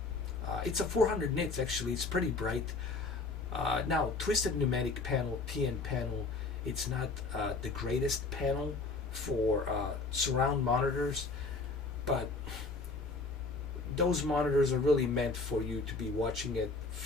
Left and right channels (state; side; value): quieter; right; 3.8 dB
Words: It's a 400 nits actually. It's pretty bright. Now, Twisted Pneumatic panel, TN panel, it's not the greatest panel for surround monitors, but those monitors are really meant for you to be watching it